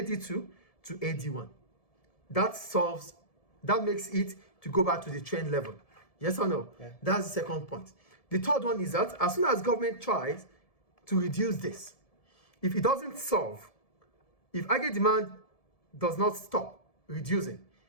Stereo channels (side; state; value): right; late; 1.7 ms